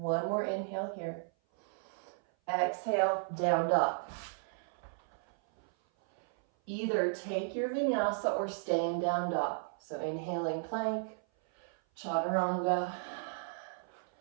more inhale here. Exhale, down dog. Either take your vinyasa or stay in down dog. So inhaling plank, chaturanga.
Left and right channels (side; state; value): left; silent; 55 dB below the other